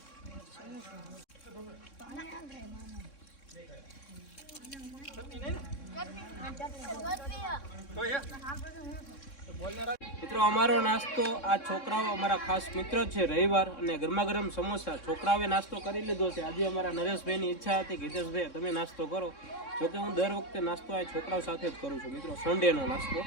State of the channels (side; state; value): right; late; 3.6 ms